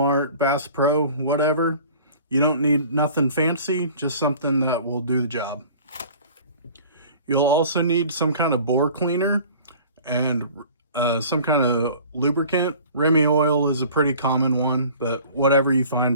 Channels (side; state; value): both; inverted; correlation -0.46